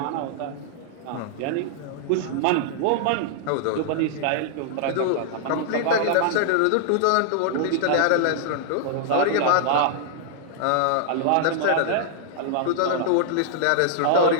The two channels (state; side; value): different; both; correlation -0.01